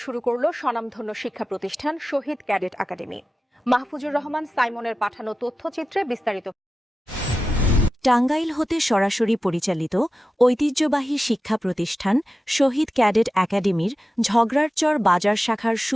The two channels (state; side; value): normal; both; correlation 0.93